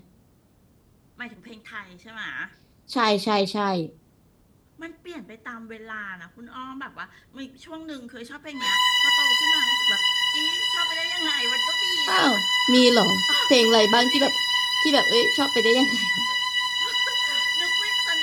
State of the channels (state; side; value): identical; both; correlation 1.00